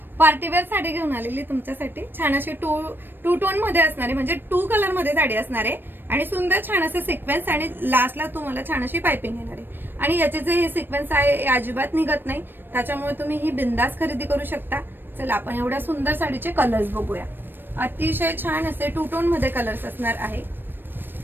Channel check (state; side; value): late; left; 0.096 ms